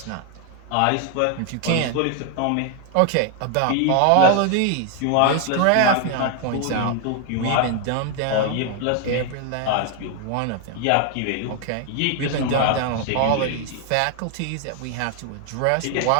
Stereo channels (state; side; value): different; both; correlation 0.00